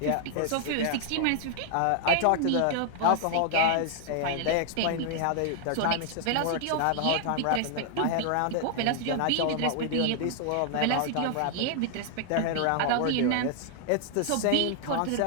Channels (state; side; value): different; both; correlation 0.00